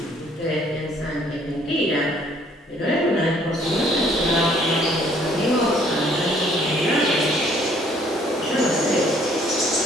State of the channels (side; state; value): both; normal; correlation 0.61